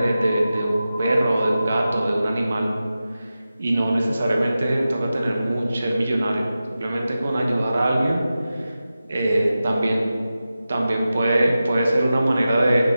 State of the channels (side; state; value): both; inverted; correlation -0.93